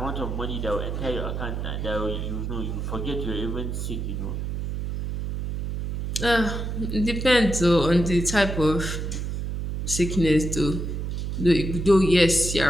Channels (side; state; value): right; noise; hum, 3 dB below the sound